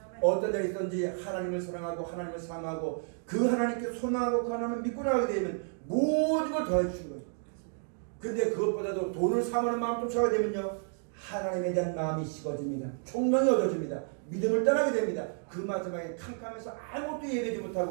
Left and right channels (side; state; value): left; silent; 57 dB below the other